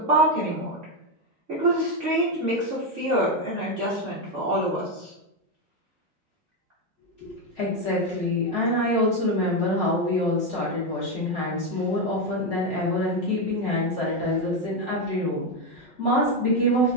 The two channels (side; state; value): both; normal; correlation 0.07